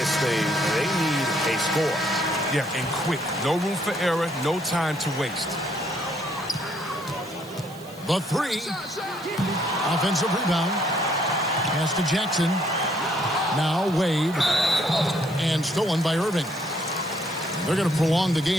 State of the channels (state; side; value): noise; right; hiss, 22 dB below the sound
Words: thing, they need a score. Yeah, and quick. No room for error, no time to waste. The three. Offensive rebound. Pass to Jackson. Now Wade. And stolen by Irving. They're going to prolong the